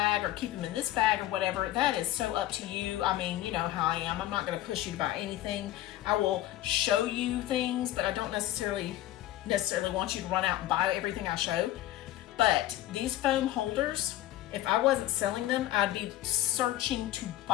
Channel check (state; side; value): quieter; right; 14.5 dB